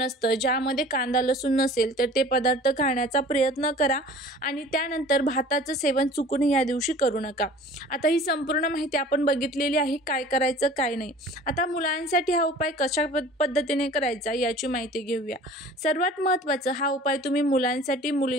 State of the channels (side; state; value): both; normal; correlation 0.45